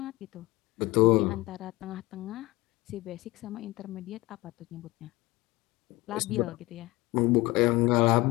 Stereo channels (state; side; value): quieter; right; 21.0 dB